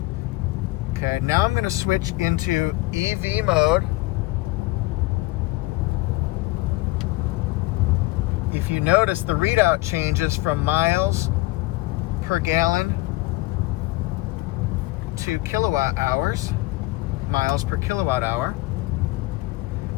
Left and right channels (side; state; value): right; quieter; 20.5 dB